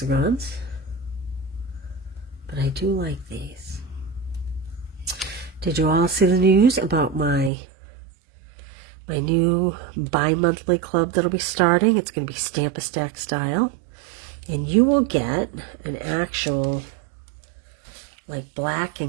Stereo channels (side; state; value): left; drops out; at 7.5 s